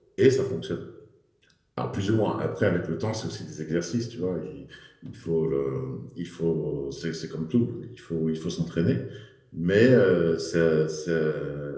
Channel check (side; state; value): both; identical; correlation 1.00